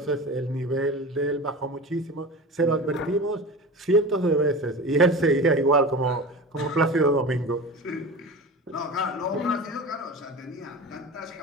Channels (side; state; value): both; normal; correlation 0.31